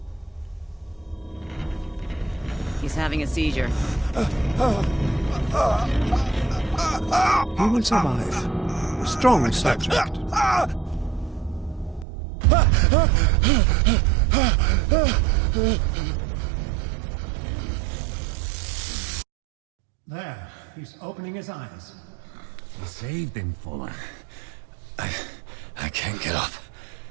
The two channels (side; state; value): left; drops out; at 12.1 s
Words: He's having a seizure. He will survive. Strong subject. There, he's opening his eyes. You saved him, Fuller. I can't get up.